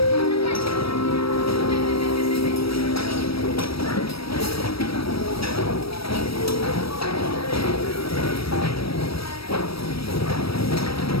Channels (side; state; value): right; late; 0.76 ms